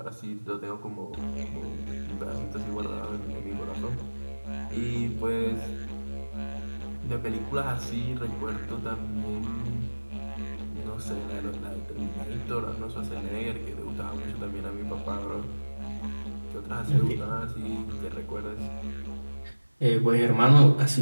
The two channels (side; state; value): both; inverted; correlation -1.00